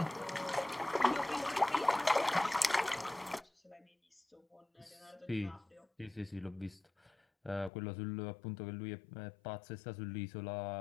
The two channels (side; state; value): right; drops out; at 7.7 s